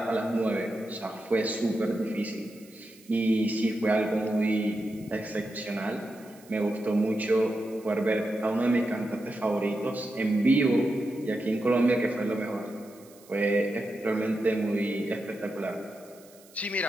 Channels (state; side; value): noise; right; hiss, 25 dB below the sound